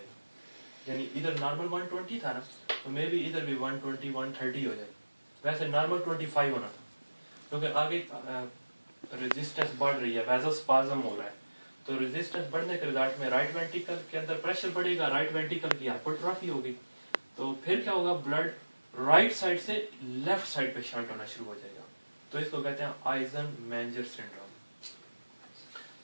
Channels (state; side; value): inverted; both; correlation -1.00